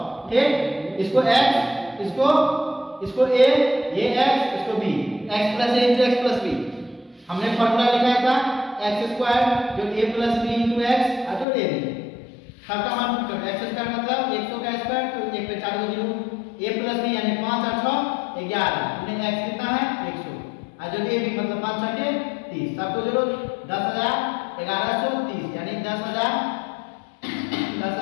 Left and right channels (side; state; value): right; drops out; at 11.5 s